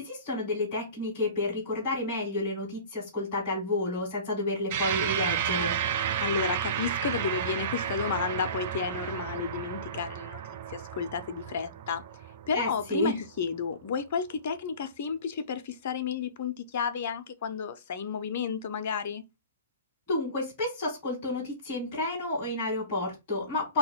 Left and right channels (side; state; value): both; inverted; correlation -0.38